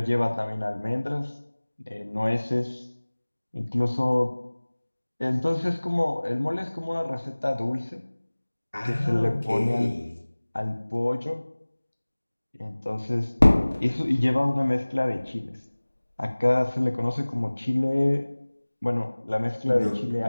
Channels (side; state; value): both; inverted; correlation -1.00